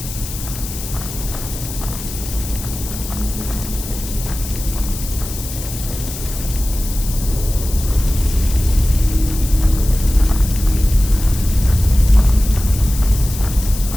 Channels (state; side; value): noise; left; hiss, 10 dB below the sound